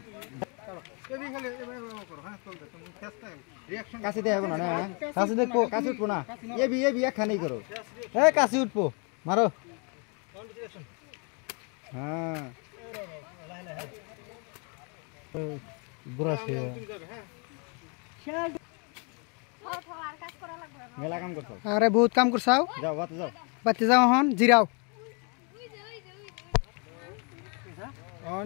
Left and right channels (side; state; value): right; quieter; 35.1 dB